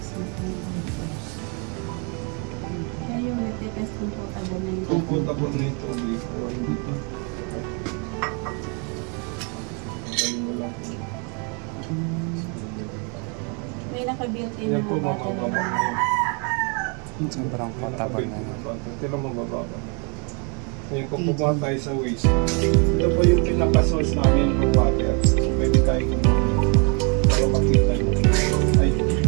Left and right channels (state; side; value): quieter; left; 35.8 dB